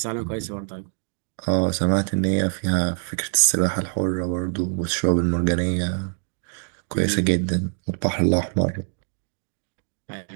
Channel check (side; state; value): left; silent; digital silence